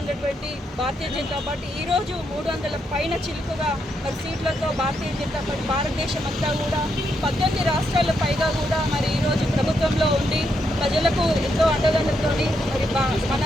ఉన్నటువంటి భారతీయ జనతా పార్టీ ఈరోజు 300 పైన చిలుకగా మరి సీట్లతో భారతీయ జనతా పార్టీ భారతదేశం అంతా కూడా 18 రాష్ట్రాల పైగా కూడా మరి ఈరోజు ప్రభుత్వంలో ఉండి ప్రజలకు ఎంతో అండదండలతోని మరి మన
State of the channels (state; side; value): normal; both; correlation 0.80